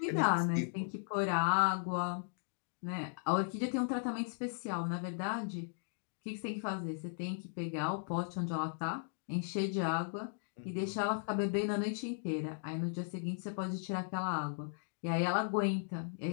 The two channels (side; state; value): right; silent; digital silence